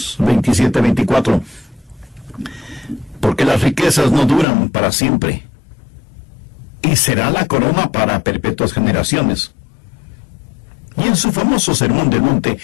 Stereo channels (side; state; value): right; drops out; at 4.5 s